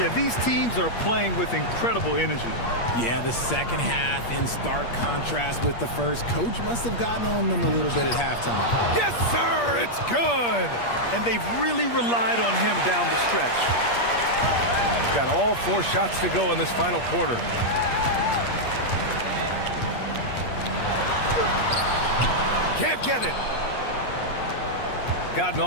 these teams are playing with incredible energy. Yeah, the second half in stark contrast with the first. Coach must have gotten on them a little bit at halftime. Yes, sir, it's good. And they've really relied on him down the stretch. Got all 4 shots to go in this final quarter. Can't get it. Gotten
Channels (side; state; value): right; late; 8.5 ms